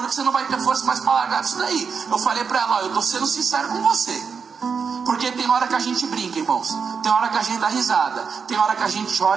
que você não vai ter força mais para largar disso daí. Eu falei para ela, ó, eu estou sendo sincero com você, porque tem hora que a gente brinca, irmãos, tem hora que a gente dá risada, tem hora que a gente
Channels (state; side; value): quieter; left; 5.9 dB